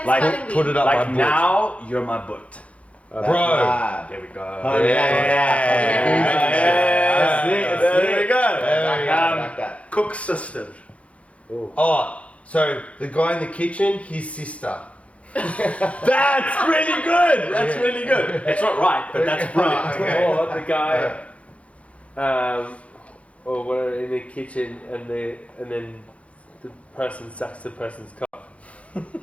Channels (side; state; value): right; late; 0.064 ms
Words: like, a spelling bee. Put it up my like boot. now, you're my butt. That's Bro. bad. There we go. Oh, yeah. That's it, that's There it. we go. Back that, back that. Cook's sister. Oh, so the guy in the kitchen, his sister. That's really good. That's really good. It's not right, but that's brilliant. Or the guy, or we're in the kitchen and then the person sucks the person's cock.